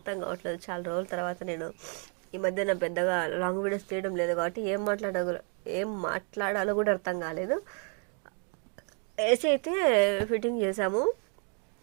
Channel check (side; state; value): left; quieter; 39.7 dB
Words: కావట్లేదు. చాలా రోజుల తర్వాత నేను ఈ మధ్యన పెద్దగా లాంగ్ వీడియోస్ తీయడం లేదు కాబట్టి ఏం మాట్లాడాలో కూడా అర్థం కాలేదు. ఏసీ అయితే ఫిట్టింగ్ చేసాము.